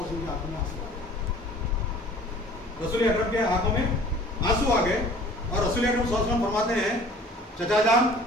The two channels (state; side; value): normal; both; correlation 0.48